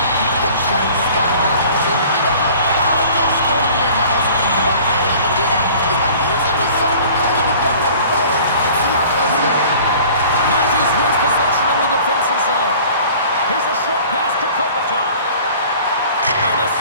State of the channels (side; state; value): both; inverted; correlation -0.47